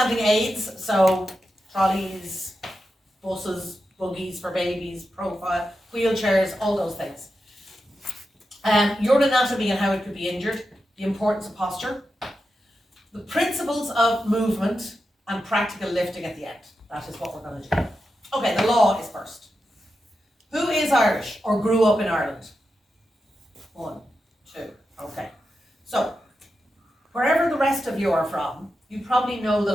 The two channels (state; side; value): normal; both; correlation 0.89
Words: aids, so trolleys, buses, buggies for babies, profile, wheelchairs, all those things. Your anatomy and how it could be injured, the importance of posture, the principles of movement, and practical lifting at the end. That is what we're going to do. Okay, the law is first. Who is Irish or grew up in Ireland? 1, 2, okay. So, wherever the rest of you are from, you probably know the